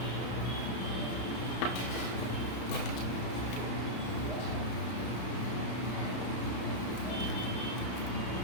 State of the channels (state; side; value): late; right; 32 ms